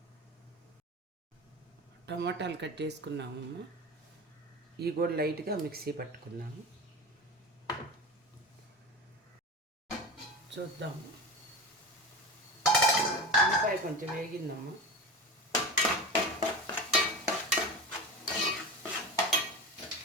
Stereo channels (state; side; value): normal; both; correlation 0.28